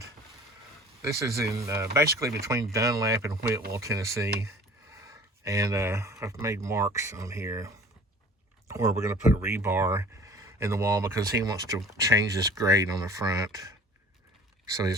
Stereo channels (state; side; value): normal; both; correlation 0.46